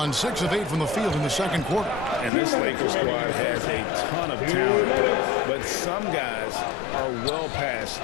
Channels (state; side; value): drops out; right; at 2.3 s